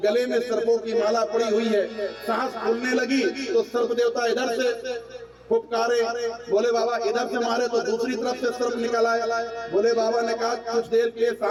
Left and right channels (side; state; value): both; identical; correlation 1.00